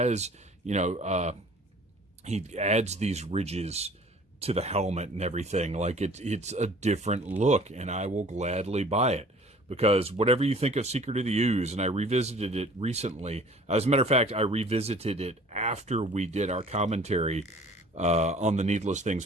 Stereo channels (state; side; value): normal; both; correlation 0.50